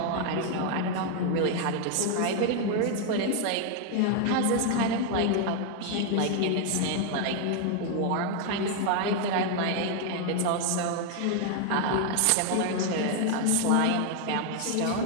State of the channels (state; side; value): different; both; correlation 0.00